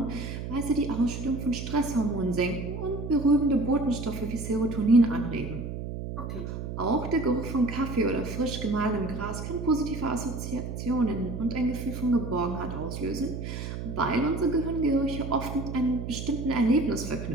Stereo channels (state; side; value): noise; right; hum, 6 dB below the sound